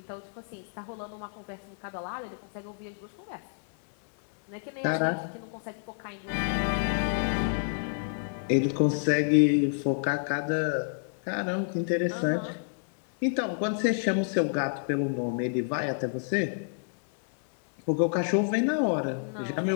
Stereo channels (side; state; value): right; silent; 59 dB below the other